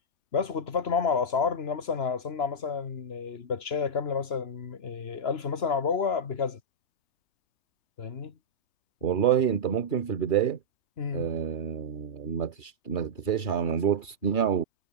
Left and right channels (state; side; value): late; right; 2.9 ms